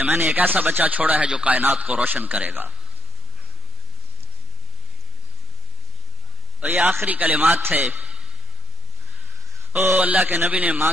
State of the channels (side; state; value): both; normal; correlation 0.68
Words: میں نے ایک ایسا بچہ چھوڑا ہے جو کائنات کو روشن کرے گا. اور یہ آخری کلمات تھے. او اللہ کے نبی نے ماں